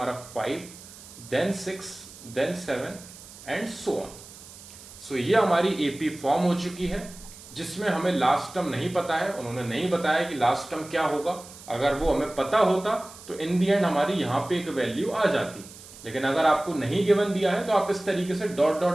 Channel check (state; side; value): noise; right; hiss, 18 dB below the sound